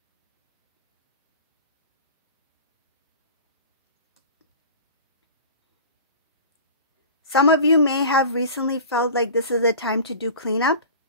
Some of you may have recently felt like this is the time to do cleanup.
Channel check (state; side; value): inverted; both; correlation -0.38